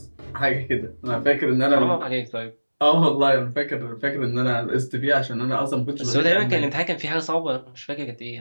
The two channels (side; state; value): both; inverted; correlation -1.00